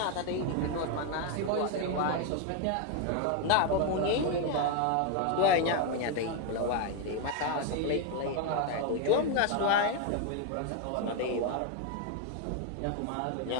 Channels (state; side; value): different; both; correlation 0.01